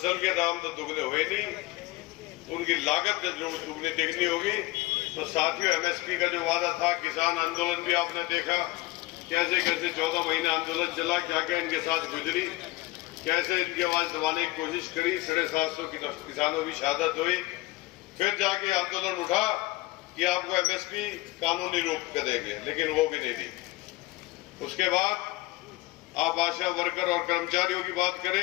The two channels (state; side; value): quieter; right; 19.4 dB